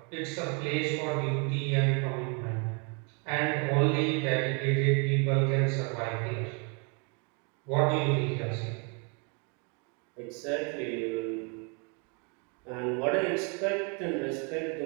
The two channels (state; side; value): quieter; left; 34.9 dB